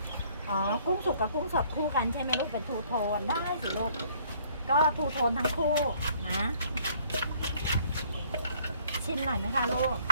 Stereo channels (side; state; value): both; inverted; correlation -0.61